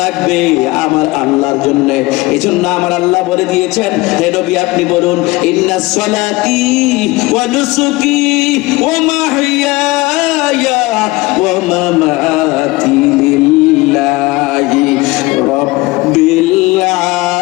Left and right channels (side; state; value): right; quieter; 21.6 dB